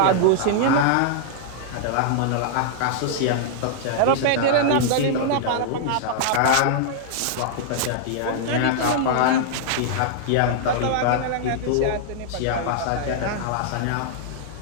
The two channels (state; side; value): different; both; correlation -0.01